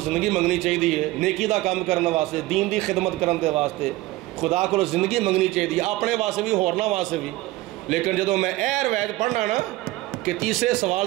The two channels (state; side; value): quieter; left; 18.4 dB